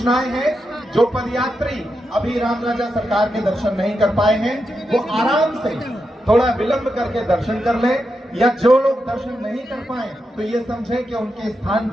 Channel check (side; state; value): both; normal; correlation 0.86